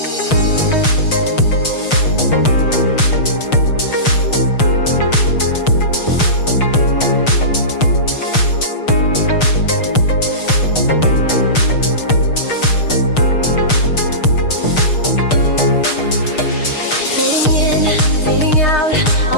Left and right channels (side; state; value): right; late; 6.5 ms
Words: Fading in, fading out,